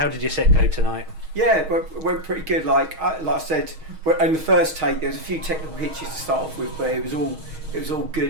did your set go tonight? Yeah, it went pretty good. Like I said, in the first take, there was a few technical hitches to start off with, but it was all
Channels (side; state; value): left; late; 6.3 ms